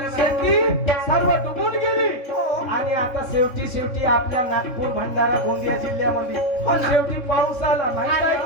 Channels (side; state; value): right; late; 3.7 ms